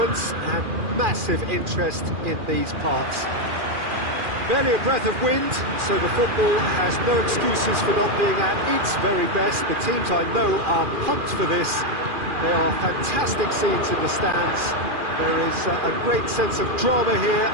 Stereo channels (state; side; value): late; left; 2.4 ms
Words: and massive interest in these parts. Barely a breath of wind, so the football has no excuses for not being at its very best. The teams I know are pumped for this. They are fantastic scenes in the stands. There is a great sense of drama here,